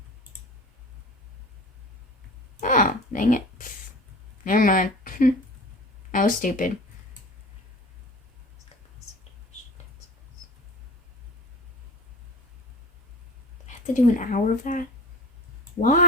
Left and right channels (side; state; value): both; normal; correlation 0.38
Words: Oh, dang it. Never mind. I was stupid. I have to do an hour of that?